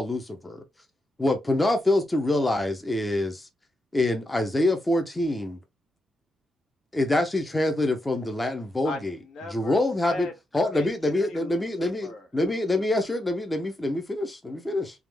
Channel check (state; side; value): normal; both; correlation 0.84